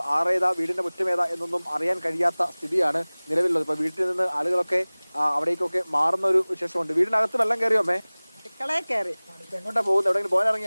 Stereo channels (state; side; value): inverted; both; correlation -1.00